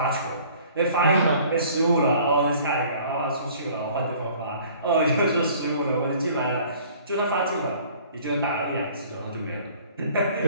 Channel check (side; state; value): both; inverted; correlation -0.53